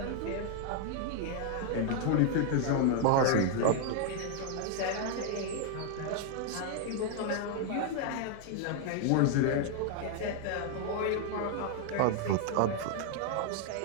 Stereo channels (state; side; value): different; both; correlation 0.00